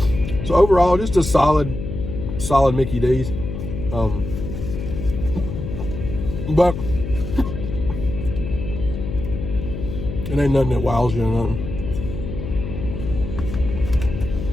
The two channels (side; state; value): left; noise; hum, 6 dB below the sound